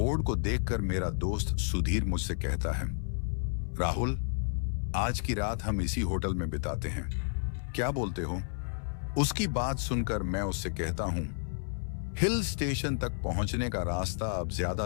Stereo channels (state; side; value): silent; right; 57 dB below the other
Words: को देखकर मेरा दोस्त सुधीर मुझसे कहता है, राहुल, आज की रात हम इसी होटल में बिताते हैं, क्या बोलते हो? उसकी बात सुनकर मैं उससे कहता हूं, हिल स्टेशन तक पहुंचने का रास्ता अब